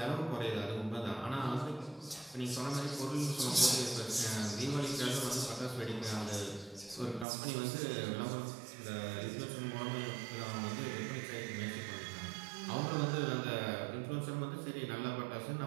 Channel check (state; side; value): drops out; left; at 7.2 s